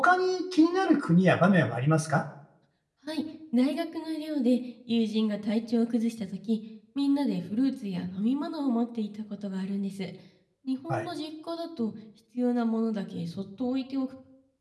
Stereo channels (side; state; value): both; identical; correlation 1.00